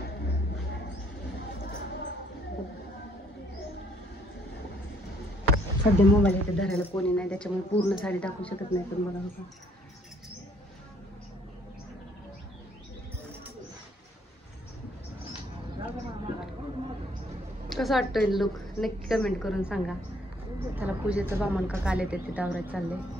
सध्या मोबाईल इथे धरायला कोणी नाही त्याच्यामुळे पूर्ण साडी दाखवू शकत नाही. पण बघा बघा कसं वाटतंय लुक नक्की कमेंट करून सांगा. त्याला पूजेचं बामण का काल येते तिथं आवरायचं चाललंय.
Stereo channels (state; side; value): normal; both; correlation 0.65